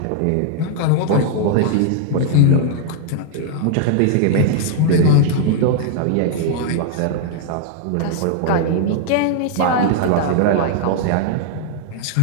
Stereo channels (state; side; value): different; both; correlation -0.01